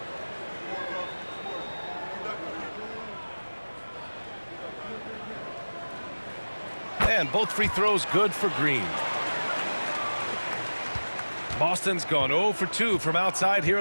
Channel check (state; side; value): inverted; both; correlation -1.00